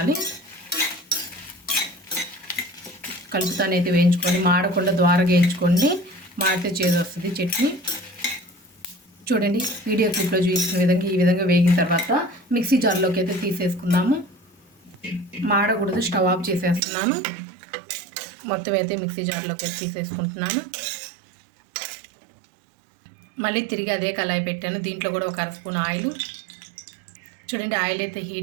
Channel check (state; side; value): drops out; left; at 16.8 s